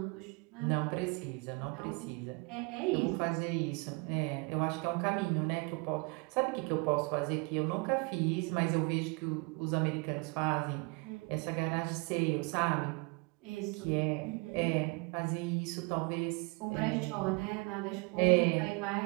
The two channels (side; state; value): left; quieter; 29.7 dB